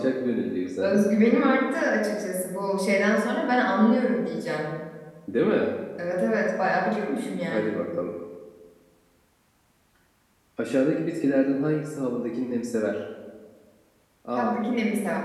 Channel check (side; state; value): both; identical; correlation 1.00